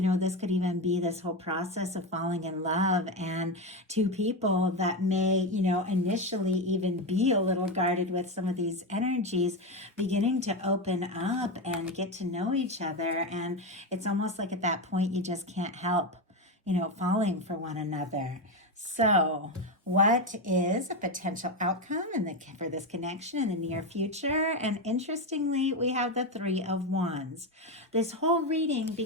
could even be this whole process of falling in love, and two people that may, initially even be a little guarded with some of these energies, beginning to open up and get to know each other. And it's almost like at that point, you just can't help, falling for one another. So, what is a potential outcome for this connection in the near future? And interestingly, we have the Three of Wands. This whole reading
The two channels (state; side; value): normal; both; correlation 0.13